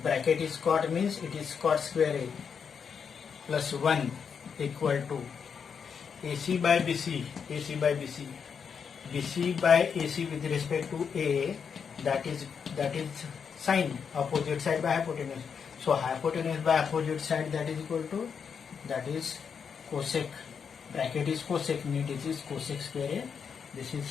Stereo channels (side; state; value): right; quieter; 6.6 dB